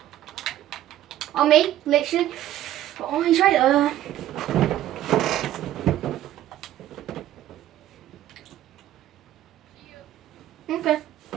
On me, literally. Oh, he's right there. Okay.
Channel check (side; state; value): left; quieter; 12.9 dB